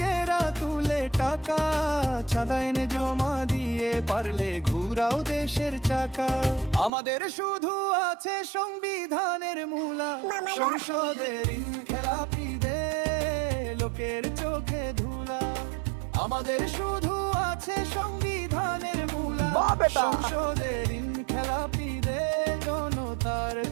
তুলে টাকা, চাঁদা এনে জমা দিয়ে পারলে ঘুরাও দেশের চাকা। আমাদের শুধু আছে সংবিধানের মূলা। সংসদের খেলাপিদের লোকের চোখে ধুলা, আমাদের শুধু আছে সংবিধানের মূলা। সংসদের খেলাপিদের জনতার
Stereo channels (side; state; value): left; drops out; at 6.9 s